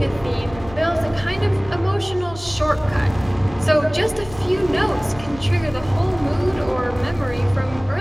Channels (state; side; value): noise; left; hum, 17 dB below the sound